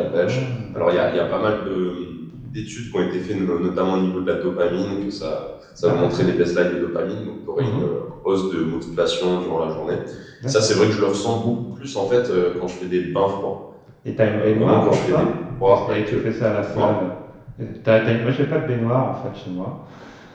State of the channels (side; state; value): both; identical; correlation 1.00